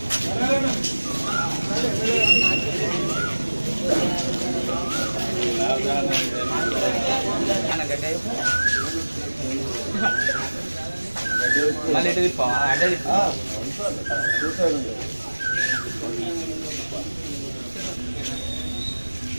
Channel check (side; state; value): both; inverted; correlation -1.00